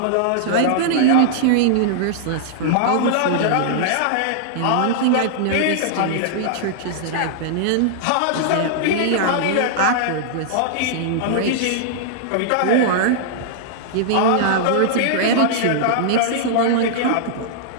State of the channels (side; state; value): both; different; correlation -0.01